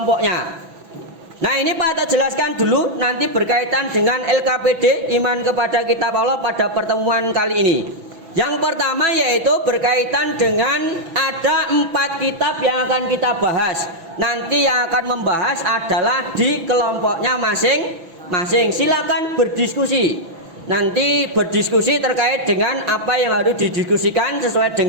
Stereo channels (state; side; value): late; left; 6.0 ms